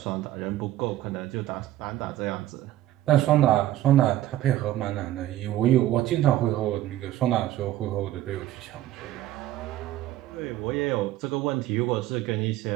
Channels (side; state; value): left; quieter; 13.9 dB